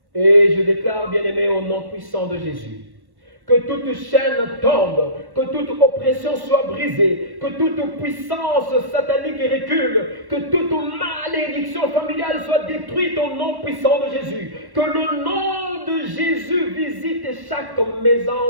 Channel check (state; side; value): late; left; 1.1 ms